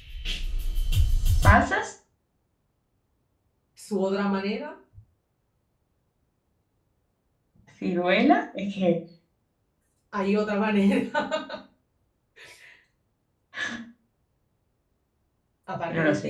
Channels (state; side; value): identical; both; correlation 1.00